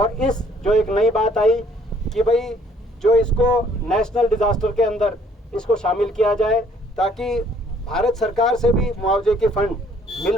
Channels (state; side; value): normal; both; correlation 0.61